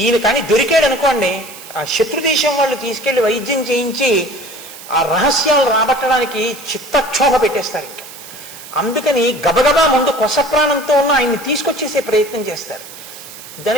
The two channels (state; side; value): noise; right; hiss, 16 dB below the sound